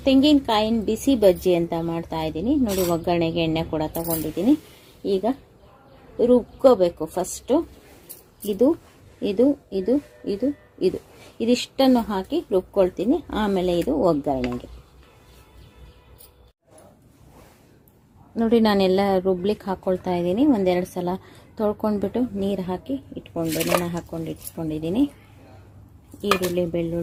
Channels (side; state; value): both; identical; correlation 1.00